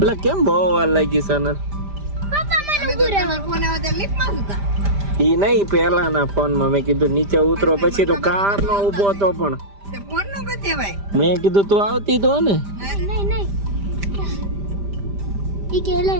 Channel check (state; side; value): late; left; 5.0 ms